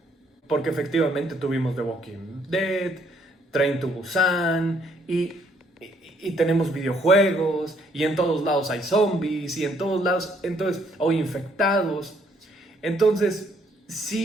Porque efectivamente tuvimos The Walking Dead, Train to Busan y tenemos videojuegos y en todos lados hay zombies y en todos lados hay infectados. Entonces,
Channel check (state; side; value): normal; both; correlation 0.67